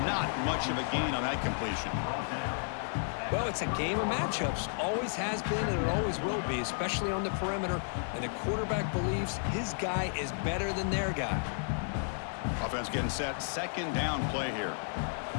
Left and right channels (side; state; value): right; silent; digital silence